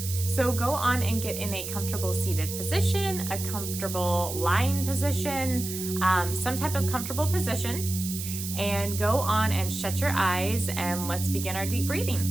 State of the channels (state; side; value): noise; right; hiss, 7 dB below the sound